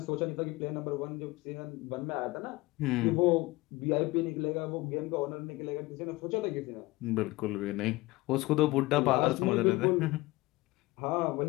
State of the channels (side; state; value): right; quieter; 21.0 dB